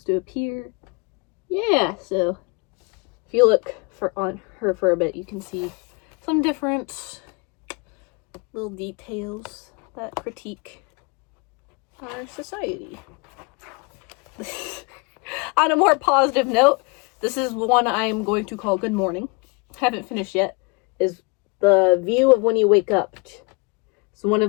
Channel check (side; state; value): right; quieter; 30.5 dB